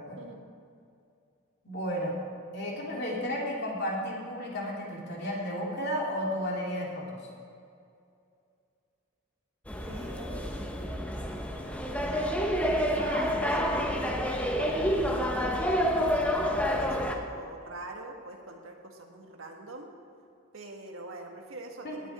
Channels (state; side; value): normal; both; correlation 0.41